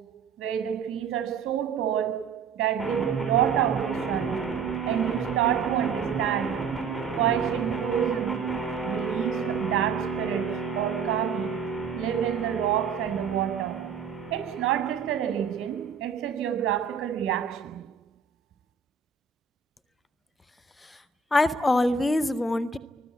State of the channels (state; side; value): quieter; left; 5.5 dB